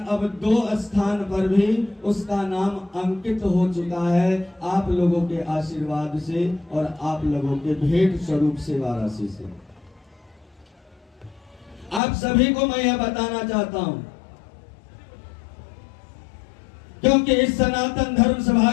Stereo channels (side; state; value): right; drops out; at 12.0 s